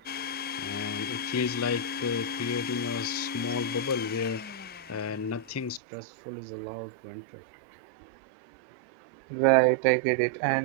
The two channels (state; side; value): drops out; left; at 5.8 s